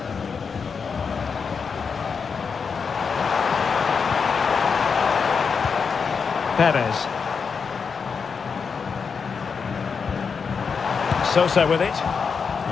Perez. Sosa with it.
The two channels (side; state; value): right; quieter; 5.7 dB